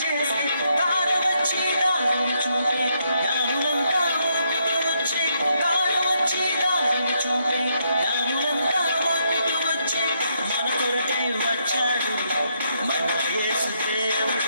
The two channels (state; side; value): inverted; both; correlation -0.77